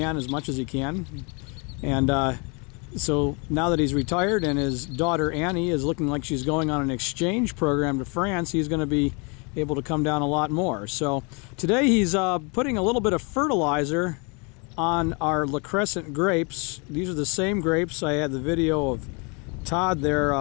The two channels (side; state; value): right; quieter; 32.5 dB